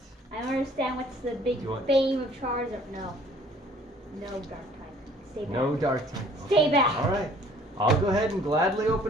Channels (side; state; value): both; normal; correlation 0.55